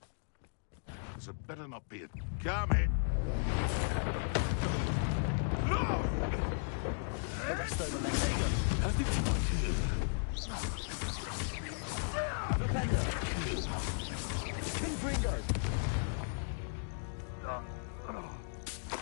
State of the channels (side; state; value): right; silent; digital silence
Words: This had better not be a coming. No! The rest over there. There you go.